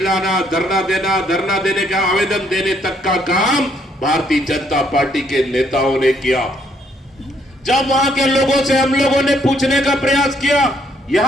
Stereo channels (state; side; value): normal; both; correlation 0.69